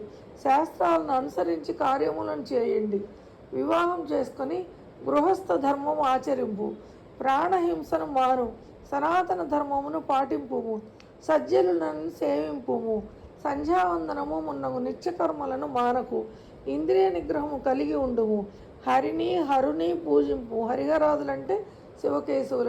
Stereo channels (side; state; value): both; identical; correlation 1.00